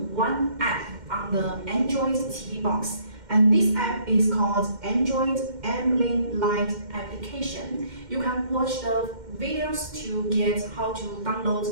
one app on the Android TV box. And this app is called Android Ambient Light application. You can watch the videos to get how to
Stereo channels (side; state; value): left; late; 2.1 ms